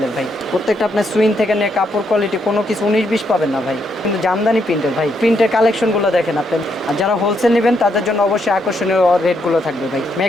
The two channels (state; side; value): normal; both; correlation 0.77